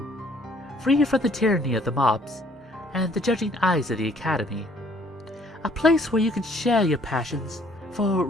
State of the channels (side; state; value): both; normal; correlation 0.60